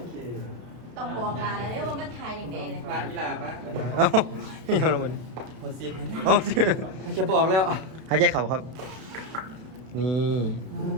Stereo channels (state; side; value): late; left; 32 ms